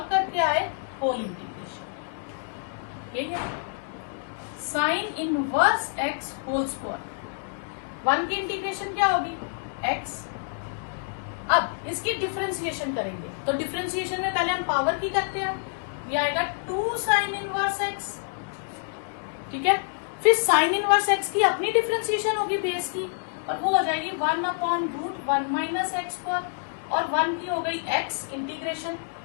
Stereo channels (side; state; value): right; silent; digital silence